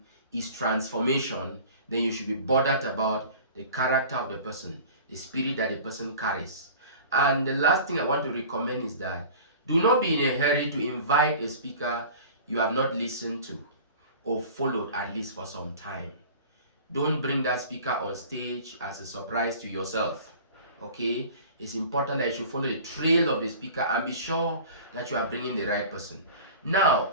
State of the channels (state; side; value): inverted; both; correlation -0.41